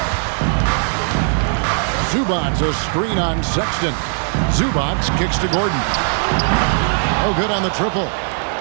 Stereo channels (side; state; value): left; silent; 58 dB below the other